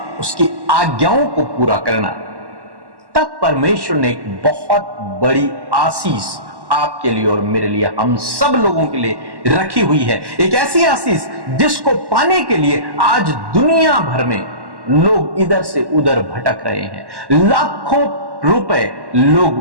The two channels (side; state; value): left; late; 1.1 ms